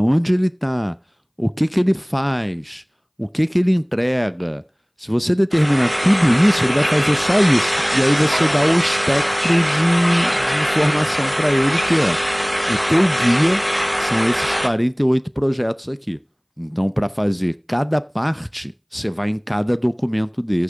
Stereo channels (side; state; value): both; identical; correlation 1.00